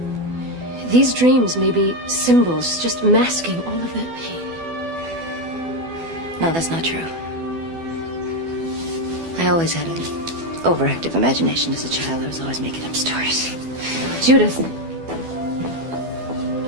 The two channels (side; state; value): left; late; 12 ms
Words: These dreams may be symbols just masking all of that pain. No, that's not true. I always had an overactive imagination as a child. I was always making up stories. Judith,